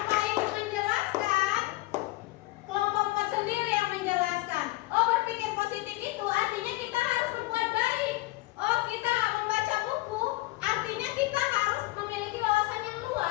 itu menjelaskan, kelompok 4 sendiri yang menjelaskan.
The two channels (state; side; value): quieter; right; 20.0 dB